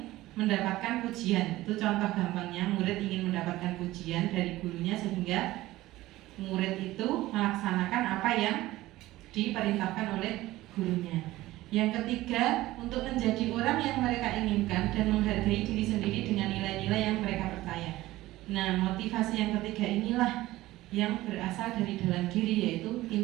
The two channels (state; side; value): quieter; left; 17.0 dB